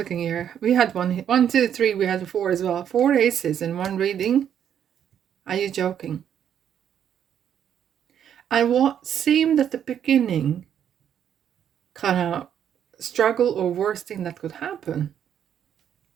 here. We had 1, 2, 3. We had 4 as well. 4 aces in one reading. Are you joking? And what seemed at the beginning kind of struggle or worst thing that could happen,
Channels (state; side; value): quieter; left; 9.2 dB